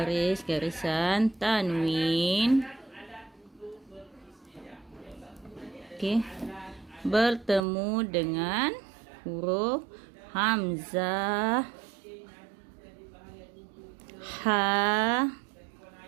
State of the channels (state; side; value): drops out; left; at 7.6 s